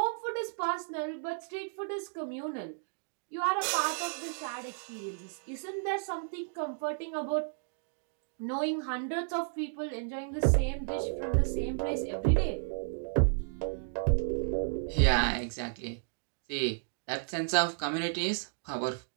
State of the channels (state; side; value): silent; left; digital silence